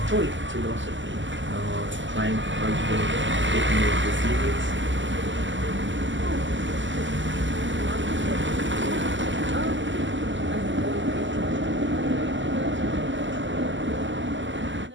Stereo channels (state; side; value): late; left; 0.54 ms